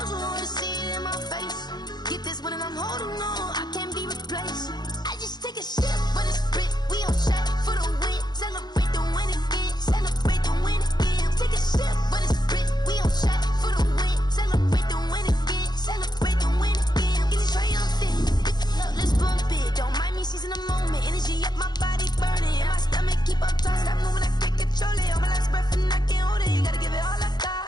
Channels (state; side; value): late; right; 0.20 ms